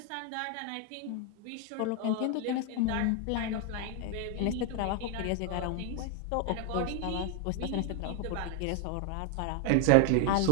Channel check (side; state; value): both; different; correlation 0.00